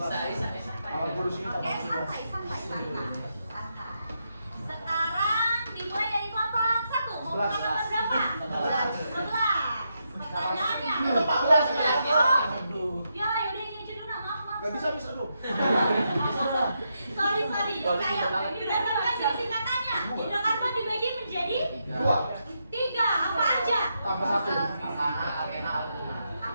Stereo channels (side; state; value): both; inverted; correlation -0.82